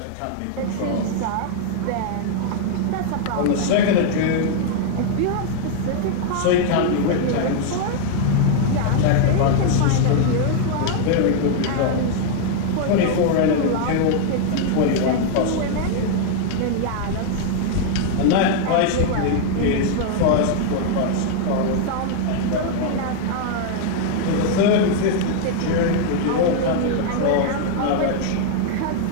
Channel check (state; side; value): different; both; correlation 0.00